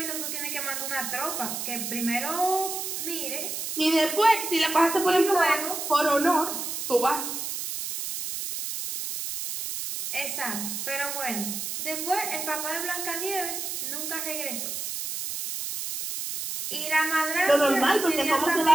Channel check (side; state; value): right; noise; hiss, 4 dB below the sound